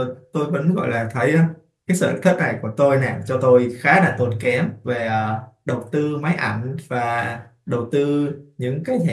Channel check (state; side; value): identical; both; correlation 1.00